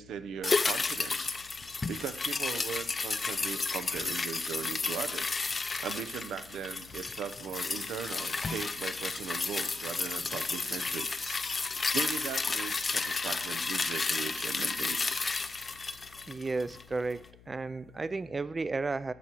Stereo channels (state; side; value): noise; left; hum, 23 dB below the sound